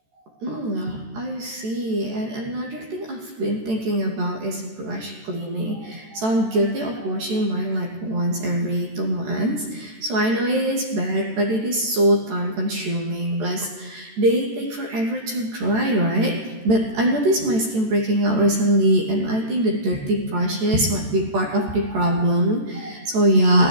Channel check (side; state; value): left; late; 14 ms